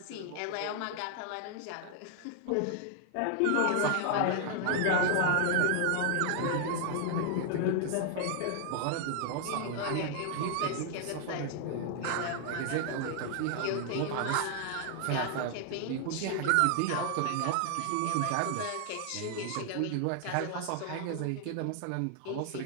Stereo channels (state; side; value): different; both; correlation 0.00